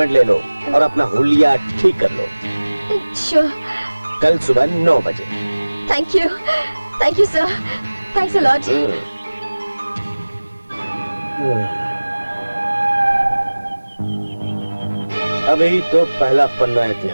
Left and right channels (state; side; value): inverted; both; correlation -1.00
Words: ले लो और अपना हुलिया ठीक कर लो। Sure. कल सुबह 9 बजे। Thank you sir. Thanks a lot. अभी तो पहला पन्ना